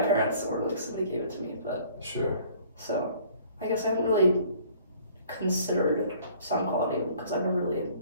my parents, or like somebody gave it to me, but Sure. so I guess I haven't really considered sound quality because I've never really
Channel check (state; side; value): inverted; both; correlation -0.55